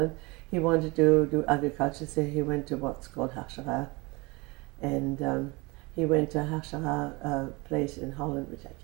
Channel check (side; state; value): left; quieter; 25.5 dB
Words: He wanted to do agriculture, so he went to what's called Hachshara. And he went to Hachshara place in Holland, which I